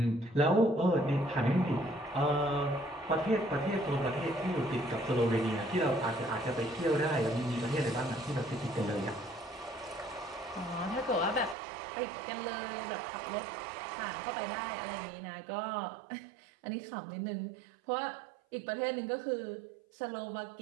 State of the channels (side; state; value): left; drops out; at 11.6 s